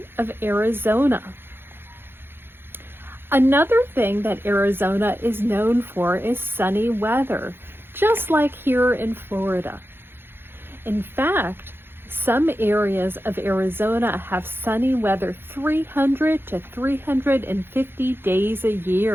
of Arizona. Another thing that Arizona is known for is sunny weather, just like here in Florida. In fact, some areas of Arizona have sunny weather 300 to 350 days a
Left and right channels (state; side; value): late; left; 0.10 ms